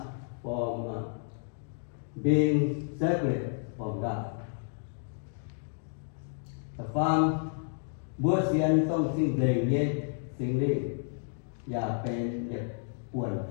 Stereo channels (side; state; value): right; silent; digital silence